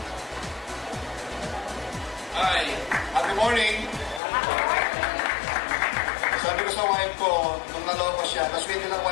Hi, good morning. Sabi ko sa wife ko, nung naloko siya, tapos hindi lang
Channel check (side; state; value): right; drops out; at 4.2 s